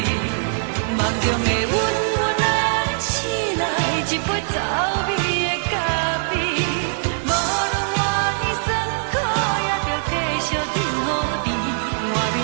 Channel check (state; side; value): silent; left; 56 dB below the other